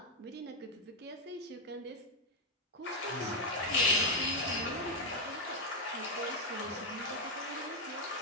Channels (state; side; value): normal; both; correlation 0.04